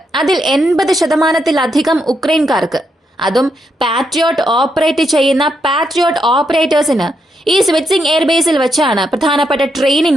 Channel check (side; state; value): both; normal; correlation 0.80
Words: അതിൽ 80% ഉക്രൈൻകാർക്ക്, അതും പാട്രിയോട്ട് ഓപ്പറേറ്റ് ചെയ്യുന്ന പാട്രിയോട്ട് ഓപ്പറേറ്റേഴ്സിന് ഈ സ്വിറ്റ്സിംഗ് എയർബേസിൽ വെച്ചാണ് പ്രധാനപ്പെട്ട